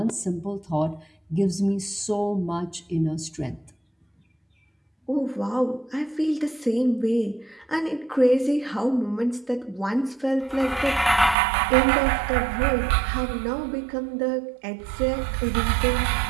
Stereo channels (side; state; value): left; drops out; at 11.4 s